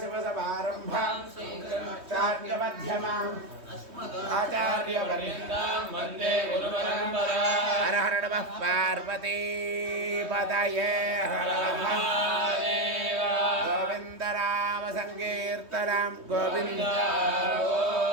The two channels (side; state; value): left; late; 3.2 ms